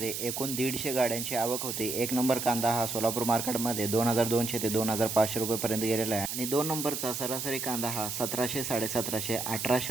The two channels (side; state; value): right; noise; hiss, 4 dB below the sound